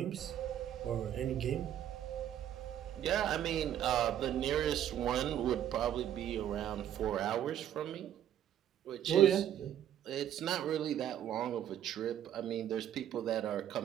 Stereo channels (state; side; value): quieter; left; 10.7 dB